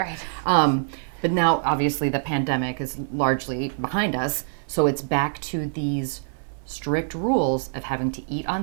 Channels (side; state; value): left; silent; 56 dB below the other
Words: Right. But now, obviously, the pandemic is largely behind us. So it's back to these strict rules of having to eat on